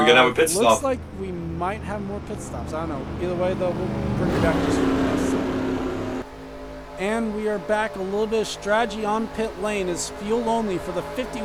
gonna have a pit stop? Looks like we might have more pit stops. I don't know. Either way, though, we'll bring you back just for this. And we are back. A little bit of strategy on pit lane is fuel only for the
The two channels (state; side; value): identical; both; correlation 1.00